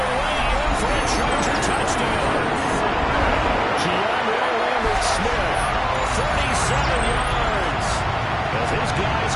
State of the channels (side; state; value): both; identical; correlation 1.00